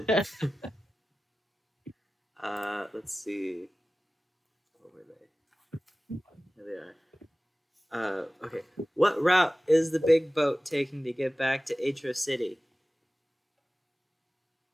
Let's see. What were they? There they are. Okay. What route is the big boat taking to get back to Aetros City?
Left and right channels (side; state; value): both; normal; correlation 0.97